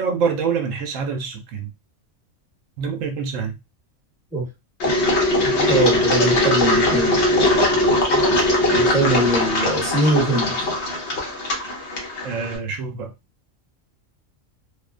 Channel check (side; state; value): both; normal; correlation 0.16